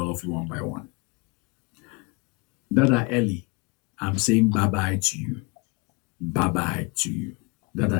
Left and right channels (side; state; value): right; quieter; 28.3 dB